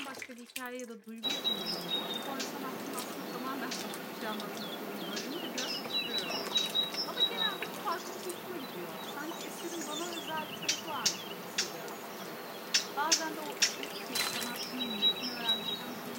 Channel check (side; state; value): both; identical; correlation 1.00